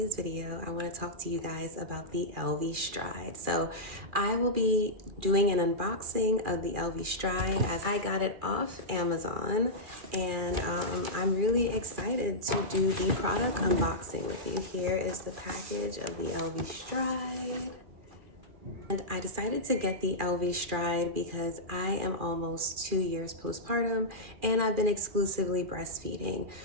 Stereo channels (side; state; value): left; late; 2.4 ms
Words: video I want to talk to you guys about the Elvie Stride. So I will be doing an unboxing of the Elvie Stride as I got it off Amazon, and I'm really excited to do the product unboxing with you. Here is the package of the Elvie Stride. And I decided to get the Elvie Stride because I am almost 2 years postpartum and I've been exclusively breastfeeding.